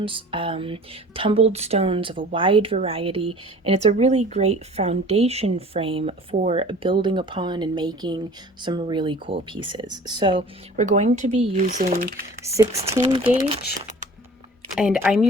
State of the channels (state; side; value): normal; both; correlation 0.45